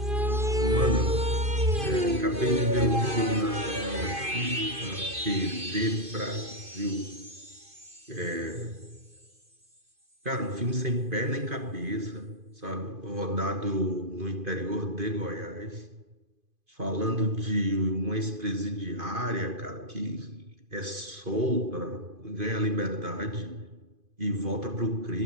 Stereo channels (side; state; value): left; late; 2.5 ms